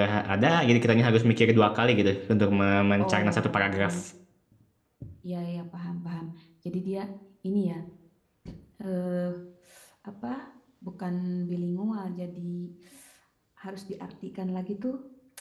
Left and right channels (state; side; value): identical; both; correlation 1.00